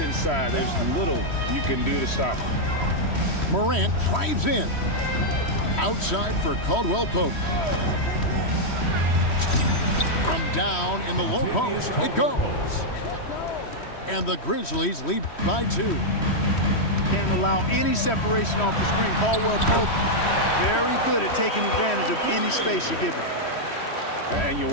there's little you can do to stop him. Morant drives in. Outside for Caldwell Pope. From down in the low post, it goes. And the Grizzlies lead by 2. Can't allow any separation off the screen. Caldwell Pope, very good at taking advantage of any space you give him. And you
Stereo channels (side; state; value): right; late; 3.1 ms